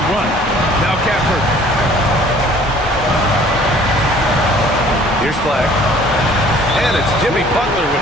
run. Now Gafford. Here's Flag. And it's Jimmy Butler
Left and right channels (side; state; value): both; normal; correlation 0.53